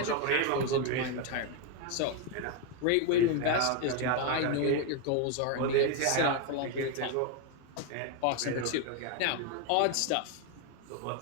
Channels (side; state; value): both; different; correlation 0.01